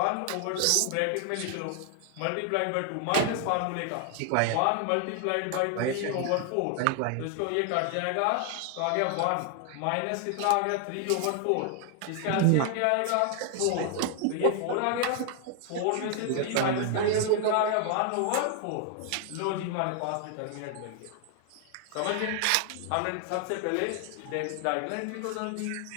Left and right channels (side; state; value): both; different; correlation 0.00